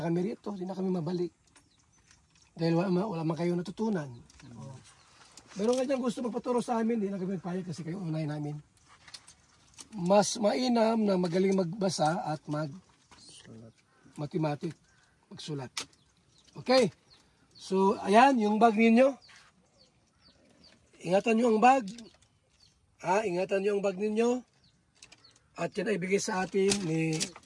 kami rito. Hindi na kami mabalik. Dahil wala man kayo natutunan. Meron nga dyan gusto magpaturo sa amin, hindi na kami magpayag kasi kayo unay namin. Mas mainam na magaling magbasa at mag-mathematics, magsulat. Okay? So, ayan, yung bag ninyo. Ingatan nyo ang bag. Ingatan nyo ang bag ninyo. At yan ay bigay sa atin ni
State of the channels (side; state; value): both; identical; correlation 1.00